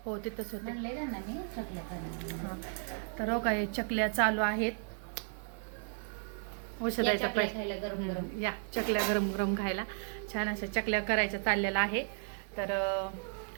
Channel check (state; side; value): silent; left; 55 dB below the other